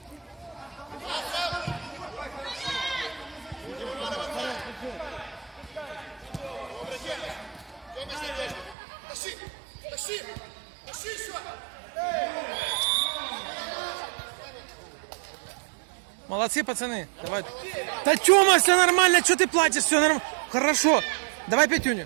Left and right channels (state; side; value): drops out; left; at 8.8 s